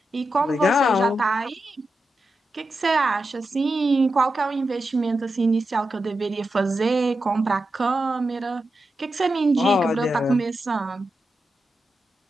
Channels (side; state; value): both; normal; correlation 0.89